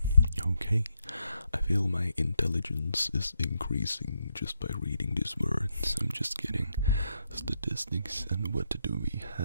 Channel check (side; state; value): both; inverted; correlation -0.80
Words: okay. I feel my intelligence is increasing just by reading these words. I'm just kidding. Statistics, and what do we